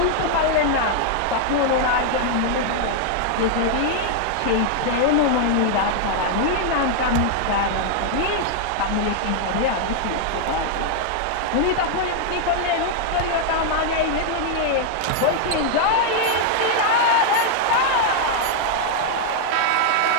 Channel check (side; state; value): both; different; correlation 0.00